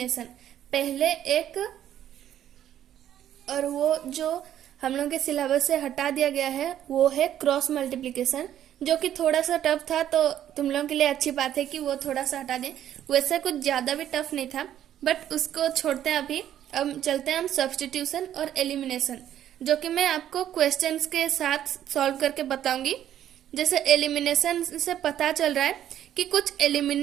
पहले एक, और वो जो हम लोग के सिलेबस से हटा दिया गया है वो है क्रॉस मल्टीप्लिकेशन, जो कि थोड़ा सा टफ था, तो तुम लोगों के लिए अच्छी बात है कि वो थोड़ा सा हटा दें। वैसे कुछ ज्यादा भी टफ नहीं था, बट उसको छोड़ते हैं अभी। अब चलते हैं हम सब्स्टिट्यूशन और एलिमिनेशन, जो कि मैं आपको क्वेश्चंस के साथ सॉल्व करके बताऊंगी। जैसे एलिमिनेशन से पता चल रहा है कि कुछ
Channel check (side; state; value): left; quieter; 11.0 dB